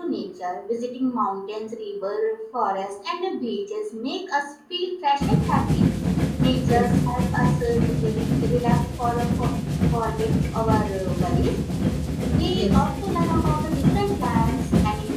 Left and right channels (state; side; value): identical; both; correlation 1.00